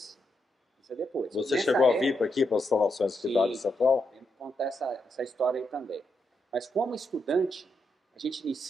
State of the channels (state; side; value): normal; both; correlation 0.82